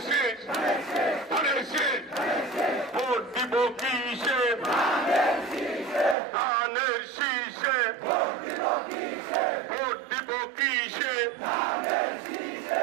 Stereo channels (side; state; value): left; drops out; at 6.2 s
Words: শীষ, ধানের শীষ। ভোট দিব কিসে? ধানের শীষে। ভোট দিব কিসে?